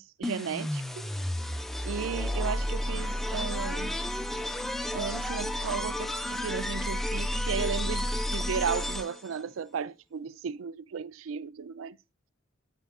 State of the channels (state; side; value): normal; both; correlation 0.52